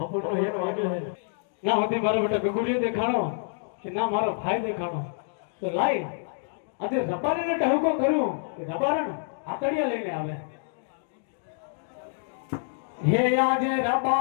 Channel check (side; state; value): right; silent; digital silence